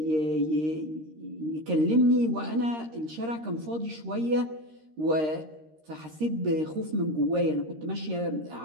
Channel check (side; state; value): left; late; 13 ms